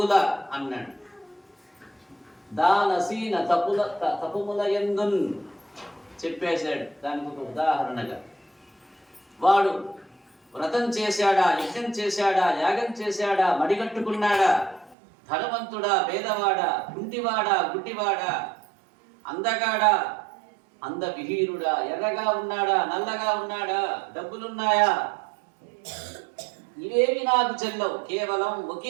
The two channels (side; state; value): left; drops out; at 15.0 s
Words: అన్నాడు. దానసీన తపుముల యందున్ చెప్పేశాడు. దానికి ఒక ఉదాహరణగా వాడు వ్రతం చేశాడా, యజ్ఞం చేశాడా, యాగం చేశాడా, మడిగట్టుకున్నాడా, ధనవంతుడా, పేదవాడా, కుంటివాడా, గుడ్డివాడా, అందగాడా, అందవిహీనుడా, ఎర్రగా ఉన్నాడా, నల్లగా ఉన్నాడా, డబ్బులున్నాయా, ఇవేవి నాకు చెల్లవు. కేవలం